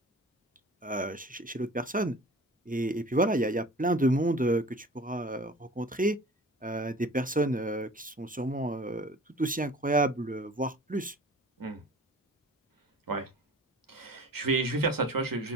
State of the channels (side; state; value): both; normal; correlation 0.43